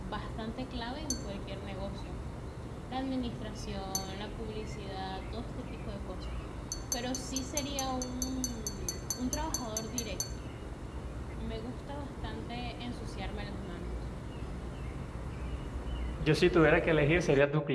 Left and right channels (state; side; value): identical; both; correlation 1.00